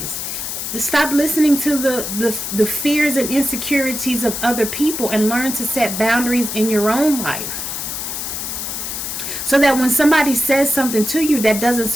Stop listening to the fears and insecurities of other people and learn to set boundaries in your own life. So that when somebody says something to you that doesn't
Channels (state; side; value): noise; left; hiss, 5 dB below the sound